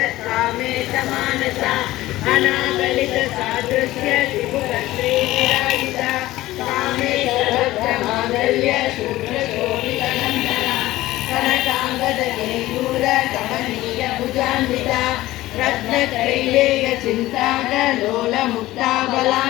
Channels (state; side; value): quieter; right; 16.7 dB